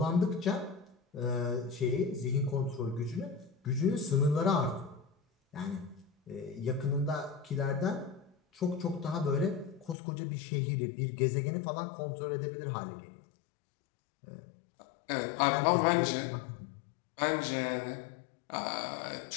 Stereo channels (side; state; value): right; drops out; at 10.0 s